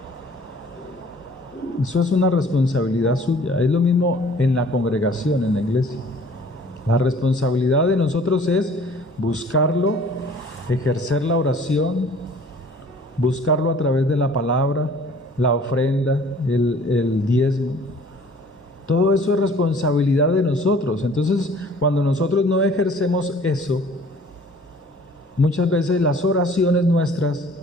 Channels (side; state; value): both; normal; correlation 0.52